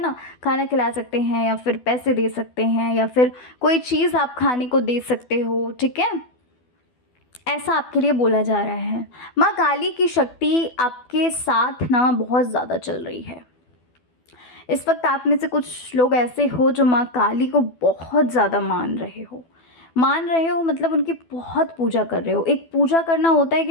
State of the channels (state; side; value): late; right; 12 ms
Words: खाना खिला सकते हैं, या फिर पैसे दे सकते हैं, या फिर कोई चीज़ आप खाने को दे सकते हो, ठीक है? ऐसा आपके लिए बोला जा रहा है। माँ काली की शक्ति आपके साथ ना बहुत ज़्यादा चल रही है। इस वक्त आप में से कुछ लोग ऐसे हो जो माँ काली को बहुत ज़्यादा मान रहे हो, मतलब उनकी बहुत पूजा कर रहे हो। एक पूजा करना होता है कि